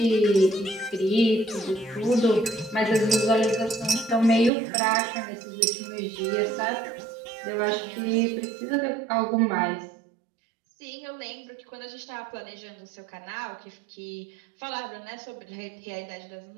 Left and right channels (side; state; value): left; drops out; at 4.5 s